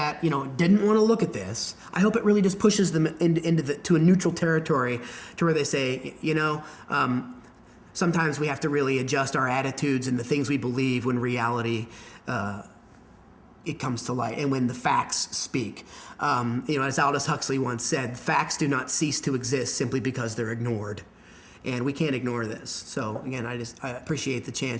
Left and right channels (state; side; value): identical; both; correlation 1.00